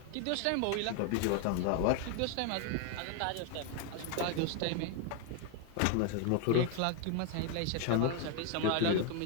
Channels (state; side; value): different; both; correlation 0.01